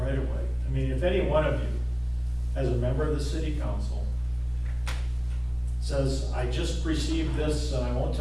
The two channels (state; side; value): identical; both; correlation 1.00